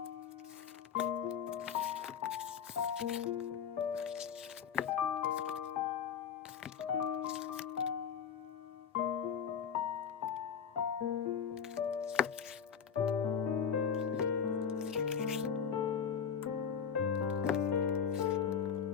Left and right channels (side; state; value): right; quieter; 7.3 dB